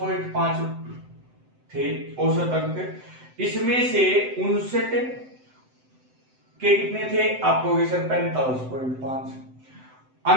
थे औसत अंक। इसमें से 59 के कितने थे, आपको होगे सर 45.5।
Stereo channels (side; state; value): left; late; 7.8 ms